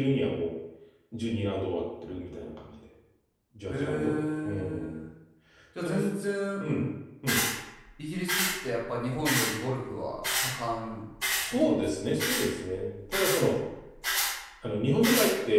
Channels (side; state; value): both; identical; correlation 1.00